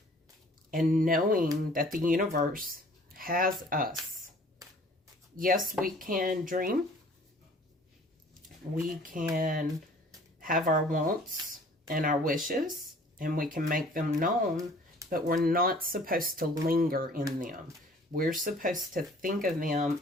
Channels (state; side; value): normal; both; correlation 0.52